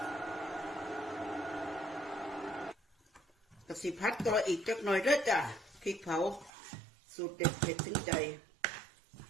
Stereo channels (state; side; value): drops out; left; at 6.5 s